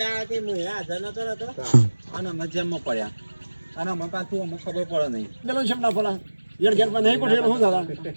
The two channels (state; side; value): inverted; both; correlation -1.00